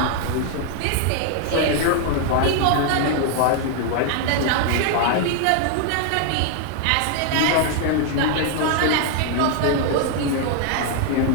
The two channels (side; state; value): both; different; correlation 0.00